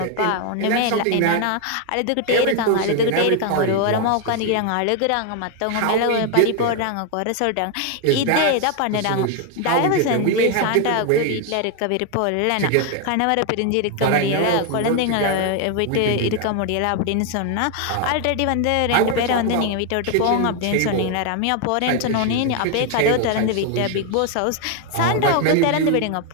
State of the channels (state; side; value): different; both; correlation 0.01